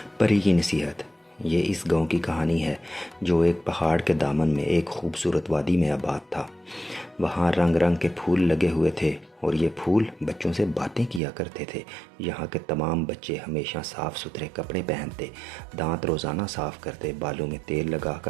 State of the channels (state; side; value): drops out; left; at 11.2 s